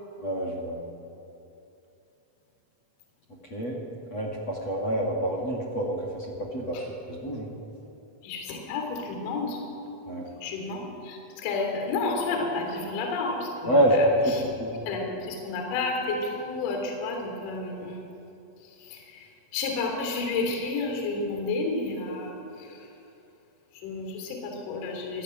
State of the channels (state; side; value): late; right; 8.2 ms